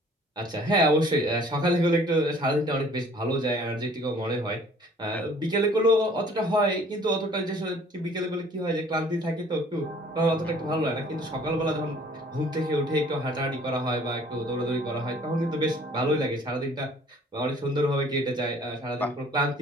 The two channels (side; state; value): both; normal; correlation 0.54